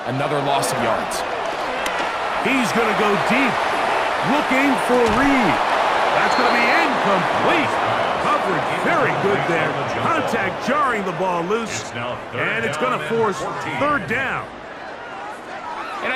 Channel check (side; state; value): both; identical; correlation 1.00